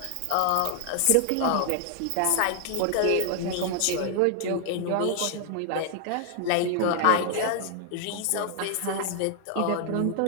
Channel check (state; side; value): different; both; correlation 0.00